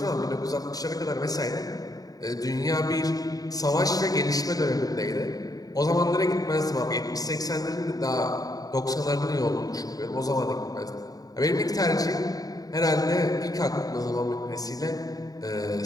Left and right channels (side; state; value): right; late; 0.18 ms